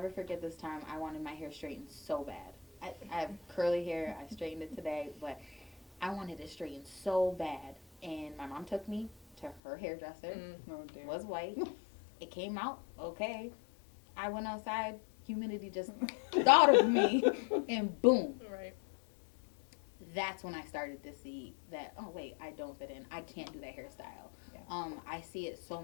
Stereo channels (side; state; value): right; drops out; at 9.6 s